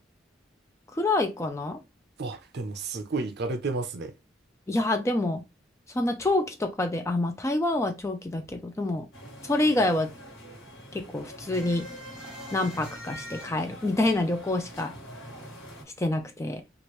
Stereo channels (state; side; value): normal; both; correlation 0.67